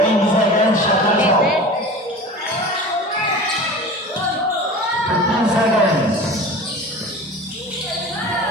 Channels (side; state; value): both; normal; correlation 0.36